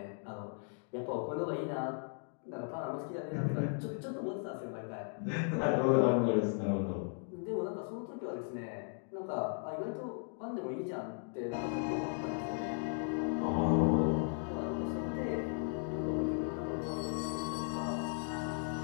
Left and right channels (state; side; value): silent; right; 53 dB below the other